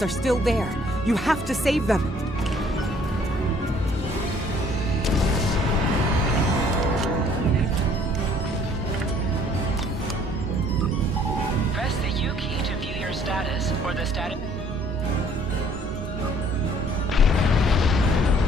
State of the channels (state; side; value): normal; both; correlation 0.59